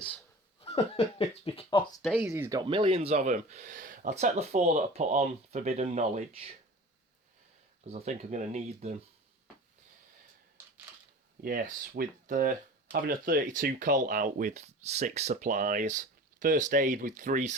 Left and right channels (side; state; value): both; normal; correlation 0.38